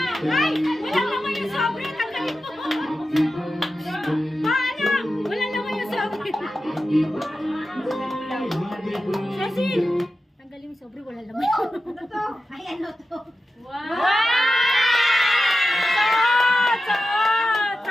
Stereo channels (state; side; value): normal; both; correlation 0.92